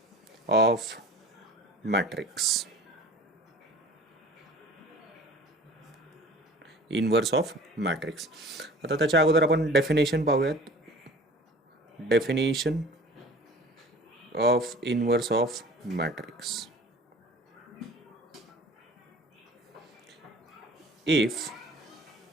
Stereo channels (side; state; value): both; normal; correlation 0.44